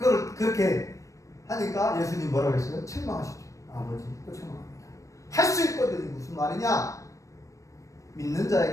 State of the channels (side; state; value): right; late; 0.16 ms